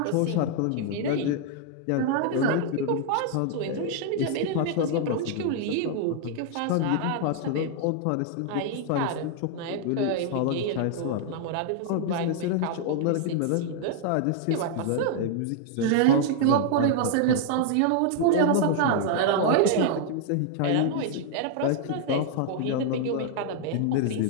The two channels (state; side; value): different; both; correlation -0.01